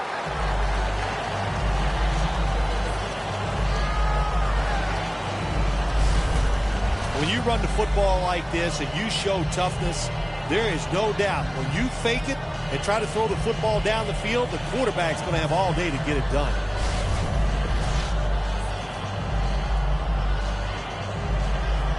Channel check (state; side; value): identical; both; correlation 1.00